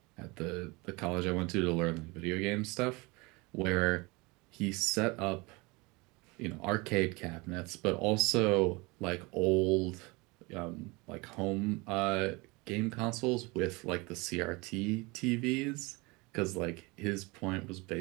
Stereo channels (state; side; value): quieter; left; 25.6 dB